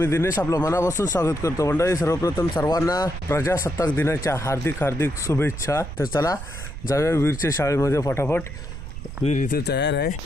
दिनेश आपलं मनापासून स्वागत करतो. मंडळी सर्वप्रथम सर्वांना प्रजासत्ताक दिनाच्या हार्दिक हार्दिक शुभेच्छा. तर चला जाऊया वीरच्या शाळेमध्ये फटाफट. वीर इथे तयार आहे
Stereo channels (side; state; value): right; noise; rumble, 9 dB below the sound